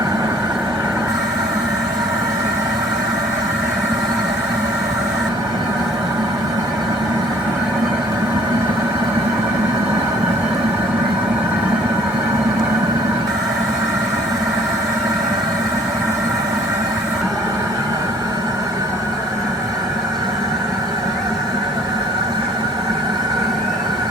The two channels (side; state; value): both; normal; correlation 0.56